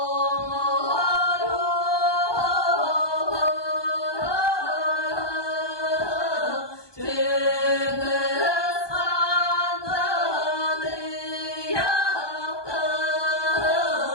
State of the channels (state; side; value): late; right; 1.2 ms